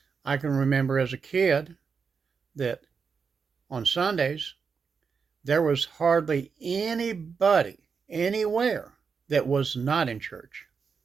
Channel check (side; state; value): left; quieter; 5.7 dB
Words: I can remember as a kid that on Sundays there was hardly anybody anywhere that was not in church.